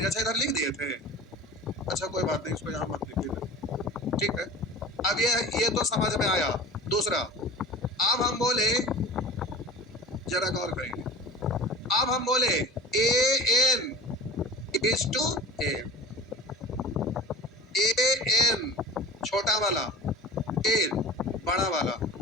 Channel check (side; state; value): both; normal; correlation 0.38